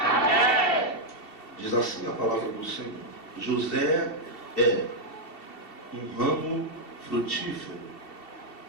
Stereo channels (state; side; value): late; right; 2.7 ms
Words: Diz assim a palavra do Senhor: José é um ramo frutífero